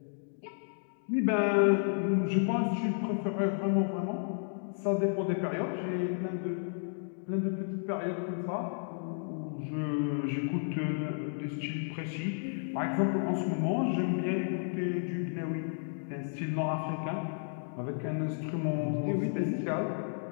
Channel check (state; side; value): silent; right; digital silence